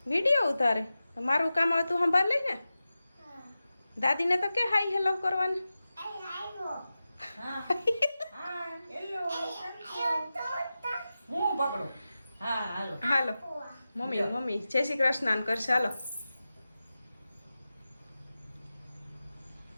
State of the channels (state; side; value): inverted; both; correlation -0.94